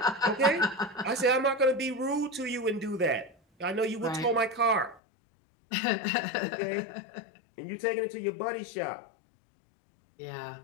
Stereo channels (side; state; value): right; drops out; at 5.0 s